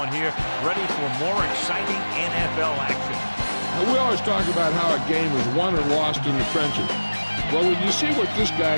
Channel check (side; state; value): both; inverted; correlation -1.00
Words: here ready for more exciting NFL action. Now, we always talk about how a game is won or lost in the trenches. Well, when you see what this